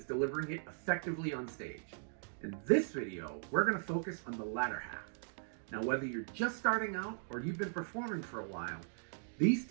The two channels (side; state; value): left; silent; digital silence